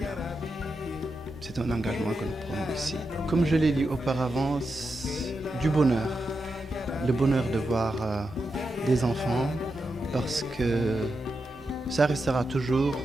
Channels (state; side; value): normal; both; correlation 0.87